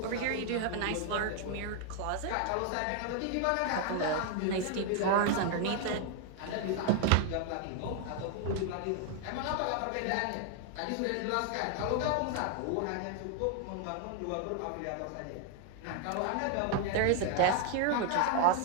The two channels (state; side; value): different; both; correlation 0.00